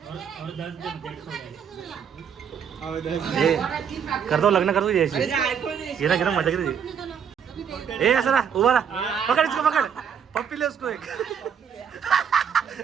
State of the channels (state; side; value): quieter; left; 7.6 dB